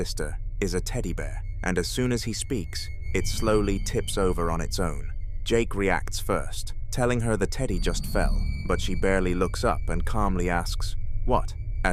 is a teddy bear, and as soon as he speaks, it slowly tips over on its own. Jake reacts first, telling her the teddy just fell, but she barely looks up and calmly asks, "What?"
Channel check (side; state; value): both; identical; correlation 1.00